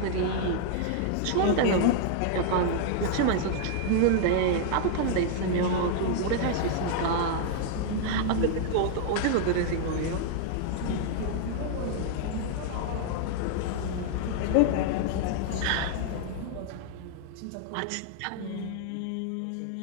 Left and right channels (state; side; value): different; both; correlation 0.00